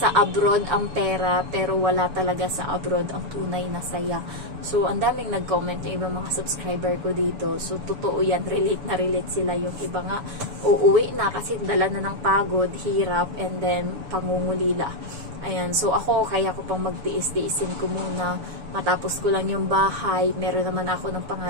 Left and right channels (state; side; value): late; left; 6.9 ms